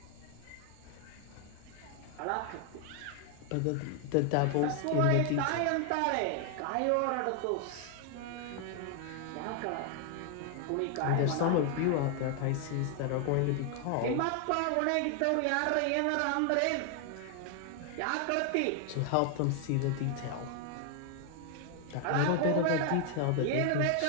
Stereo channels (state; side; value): different; both; correlation 0.00